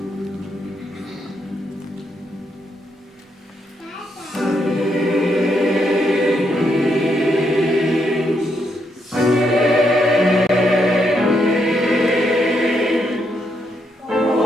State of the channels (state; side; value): normal; both; correlation 0.78